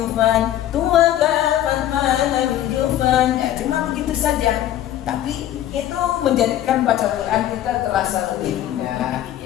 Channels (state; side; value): quieter; right; 12.6 dB